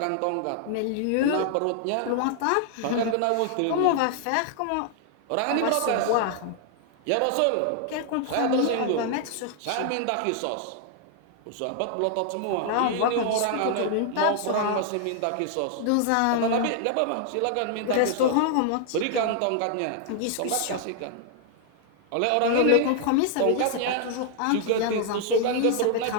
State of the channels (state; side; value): different; both; correlation 0.00